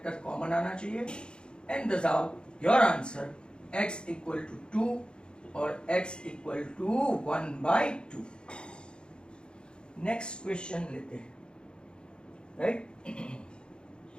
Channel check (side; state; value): right; late; 0.051 ms